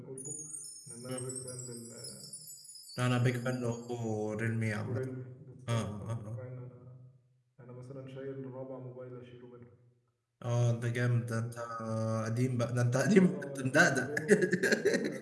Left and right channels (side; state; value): both; identical; correlation 1.00